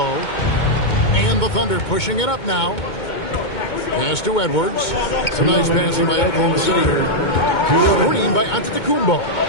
And the Thunder pushing it up now. Pass to Edwards. Some nice passing by Oklahoma City here. Screen by Antetokounmpo.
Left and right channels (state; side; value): late; right; 2.2 ms